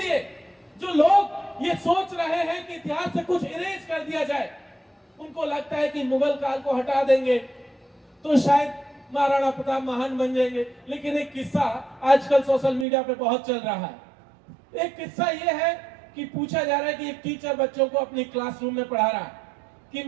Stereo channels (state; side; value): drops out; left; at 12.9 s